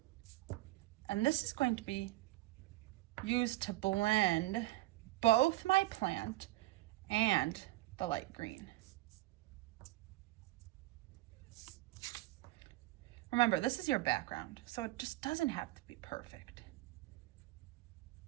and this is going to be used to blend both my plant and the light green. Remember, this is your background, so it just doesn't have to be perfect.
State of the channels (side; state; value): left; quieter; 18.2 dB